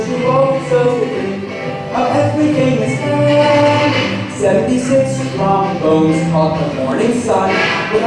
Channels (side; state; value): both; identical; correlation 1.00